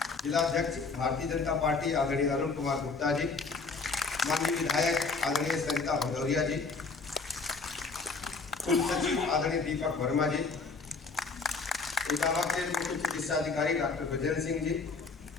जिलाध्यक्ष भारतीय जनता पार्टी आदरणीय अरुण कुमार गुप्ता जी, माननीय विधायक आदरणीय सरिता भदौरिया जी, कुल सचिव आदरणीय दीपक वर्मा जी, इटावा के मुख्य चिकित्सा अधिकारी डॉक्टर बजरंग सिंह जी,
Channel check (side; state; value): right; quieter; 4.3 dB